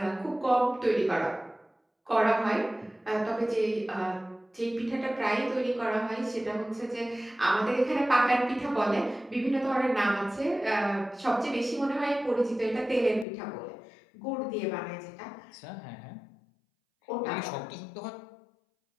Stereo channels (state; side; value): drops out; right; at 13.2 s